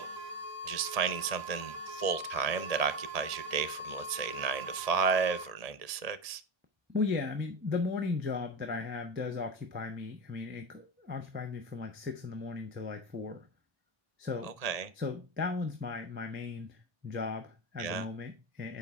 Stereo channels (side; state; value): left; late; 1.7 ms